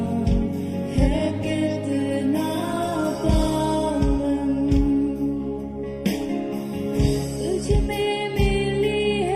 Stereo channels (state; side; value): identical; both; correlation 1.00